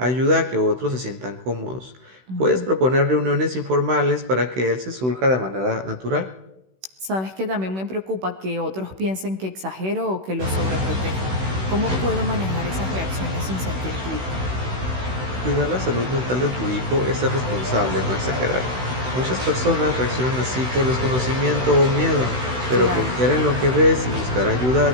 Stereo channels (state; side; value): late; left; 16 ms